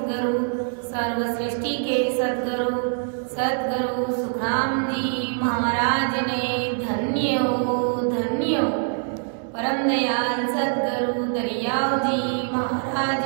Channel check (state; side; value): silent; left; digital silence